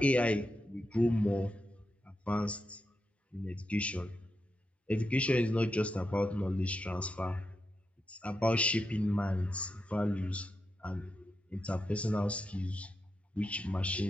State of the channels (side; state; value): both; normal; correlation 0.86